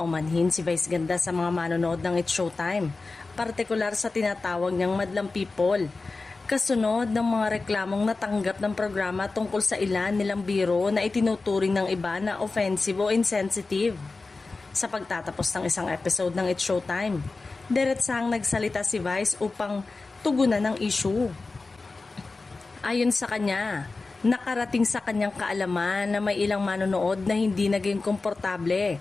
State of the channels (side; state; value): right; quieter; 3.7 dB